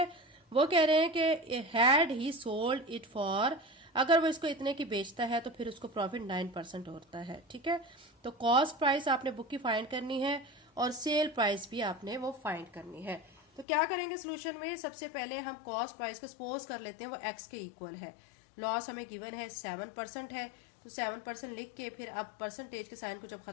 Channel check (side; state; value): right; drops out; at 13.7 s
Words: वो कह रहे हैं कि had he sold it for, अगर वो इसको इतने की बेचता है तो फिर उसको प्रॉफिट 9% होता है। ठीक है, तो कॉस्ट प्राइस आपने बुक की फाइंड करनी है और सेल प्राइस भी आपने वो फाइंड करनी है। तो क्या करेंगे सोल्यूशन में, सबसे पहले हम कॉस्ट प्राइस को सपोज कर लेते हैं वो एक्स के इक्वल है। लॉस हमें गिवन है 7% है, तो 7% लिख के फिर अब परसेंटेज के साइन को जब